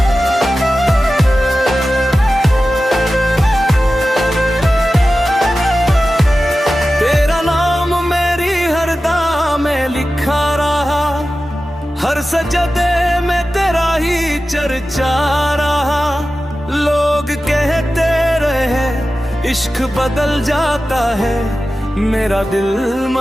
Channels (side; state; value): both; normal; correlation 0.94